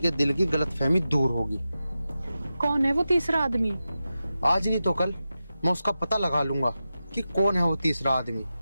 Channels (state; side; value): inverted; both; correlation -0.92